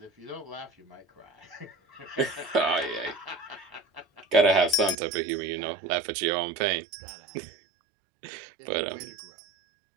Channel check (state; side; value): drops out; left; at 5.0 s